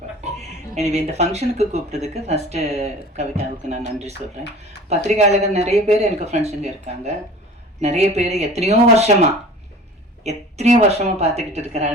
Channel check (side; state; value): both; normal; correlation 0.42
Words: எனவே இந்த ஃபங்க்ஷனுக்கு கூப்பிட்டதுக்கு ஃபர்ஸ்ட் கவிதாவுக்கு நான் நன்றி சொல்றேன். பத்திரிகையாளர்கள் நிறைய பேர் எனக்கு ஃப்ரெண்ட்ஸுங்க இருக்காங்க. நிறைய பேர் எத்தனையோ வருஷமா பார்த்துக்கிட்டு